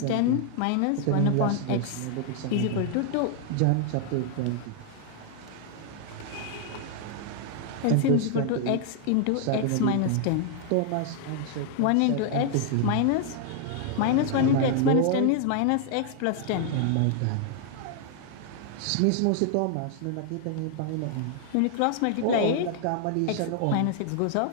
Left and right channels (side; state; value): both; different; correlation 0.00